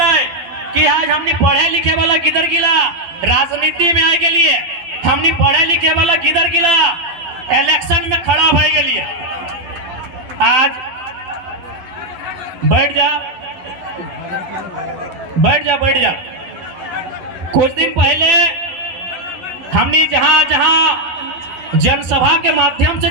है कि आज हमने पढ़े लिखे वाला किधर गिला, राजनीति में आए के लिए हमने पढ़े लिखे वाला किधर गिला, इलेक्शन में खड़ा भाई के लिए। आज बैठ जा बैठ जा बैठ जा। कुछ दिन पहले हमने जहां जहां जनसभा के माध्यम से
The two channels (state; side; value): late; left; 12 ms